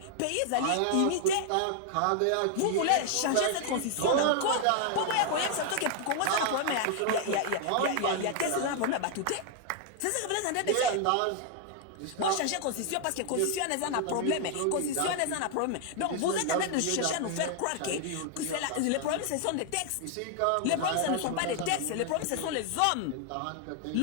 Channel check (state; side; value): different; both; correlation 0.00